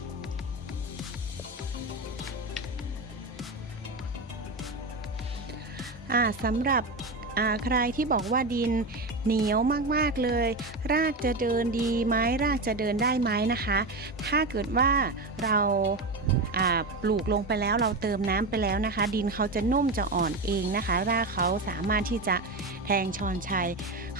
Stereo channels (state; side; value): quieter; left; 3.0 dB